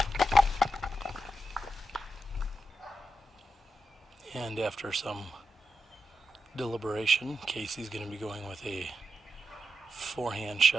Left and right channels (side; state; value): both; normal; correlation 0.87